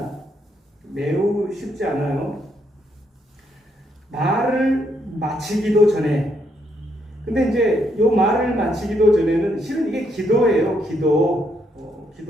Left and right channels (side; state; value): both; normal; correlation 0.75